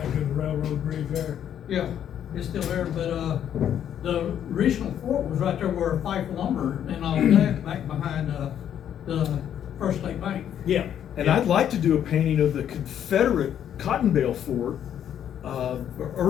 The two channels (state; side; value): quieter; right; 9.8 dB